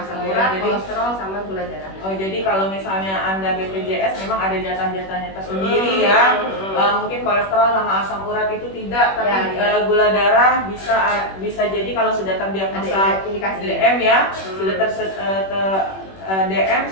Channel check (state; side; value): late; right; 21 ms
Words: urat, kolesterol, sama gula darah. Oh jadi kalau misalnya Anda BPJS memang ada jatah-jatahnya tersendiri ya. Mungkin kolesterol sama asam urat itu tidak, tapi gula darah bisa jadi kalau sudah terdiagnosa DM ya, sudah DM